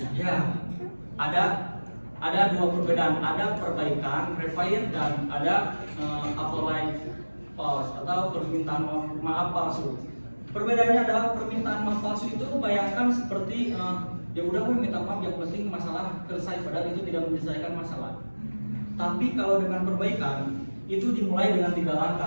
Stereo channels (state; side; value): inverted; both; correlation -1.00